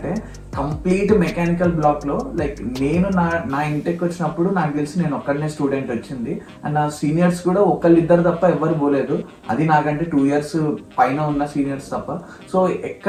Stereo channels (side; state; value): both; identical; correlation 1.00